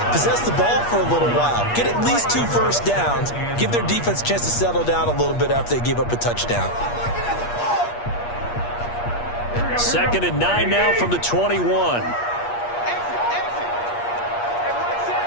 possess the ball for a little while. Get at least 2 first downs. Give their defense a chance to settle down a little bit after they give up a touchdown. 2nd and 9 now from the 21.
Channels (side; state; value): right; late; 8.4 ms